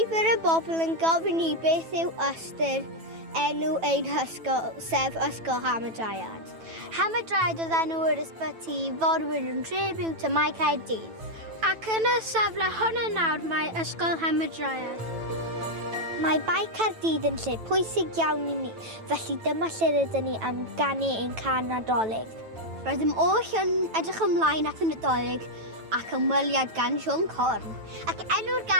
Nifer y bobl yn gofyn i beth yw ystyr enw ein hysgol, sef Ysgol Hamadryad. Hamadryad oedd enw yr ysbyty forwyn yn tribute to Mae Caerdydd. Ac yn y safle hwnna nawr mae Ysgol Hamadryad. Mae Bai Caerdydd yn lle pwysig iawn i ni, felly dyma lle rydyn ni am ganu ein can Nadolig. Rydym oll yn edrych ymlaen at y Nadolig ac ymweliad gan Sion Corn. Ac enw'r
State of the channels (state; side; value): late; left; 9.1 ms